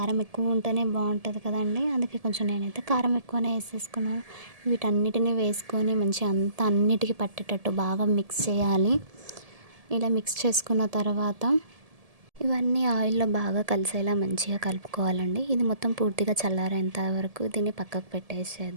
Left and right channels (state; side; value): late; left; 1.7 ms